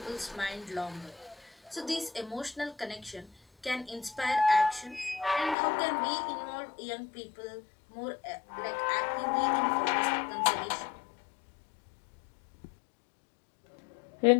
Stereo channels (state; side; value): drops out; right; at 5.6 s